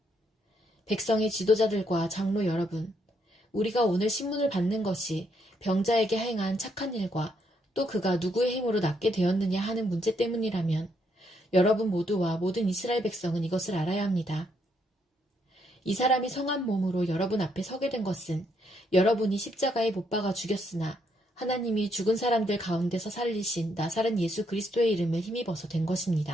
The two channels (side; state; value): both; normal; correlation 0.75